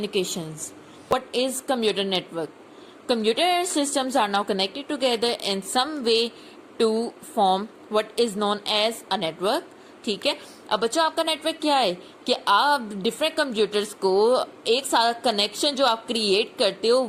What is computer network? Computer systems are now connected together in some way to form what is known as a network. ठीक है. अब बच्चों आपका network क्या है कि आप different computers को एक साथ कनेक्शन जो आप क्रिएट करते हो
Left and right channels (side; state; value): both; identical; correlation 1.00